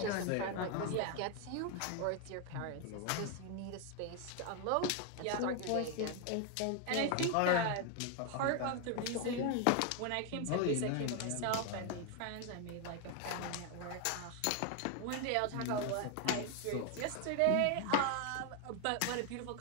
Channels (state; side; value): different; both; correlation 0.01